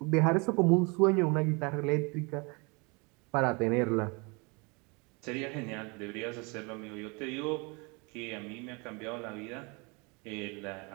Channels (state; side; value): quieter; left; 29.7 dB